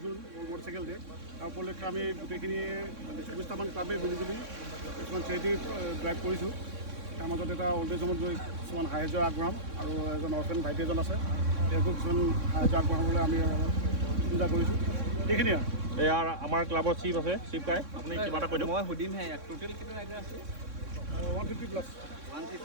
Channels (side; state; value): left; late; 3.6 ms